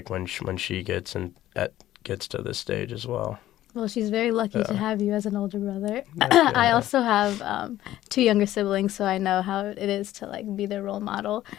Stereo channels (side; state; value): right; quieter; 13.9 dB